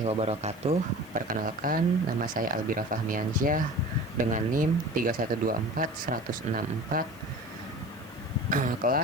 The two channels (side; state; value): right; noise; hiss, 26 dB below the sound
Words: wabarakatuh. Perkenalkan, nama saya Albira Fahmiansyah dengan NIM 3124164,